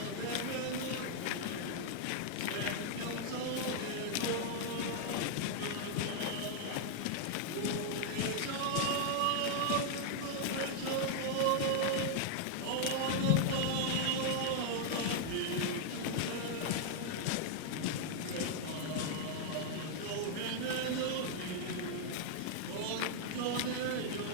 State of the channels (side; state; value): both; different; correlation 0.00